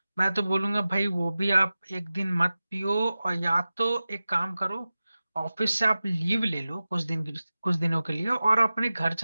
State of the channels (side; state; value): both; inverted; correlation -0.96